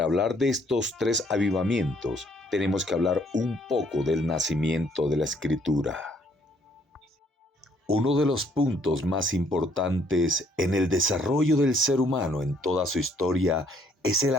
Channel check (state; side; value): normal; both; correlation 0.65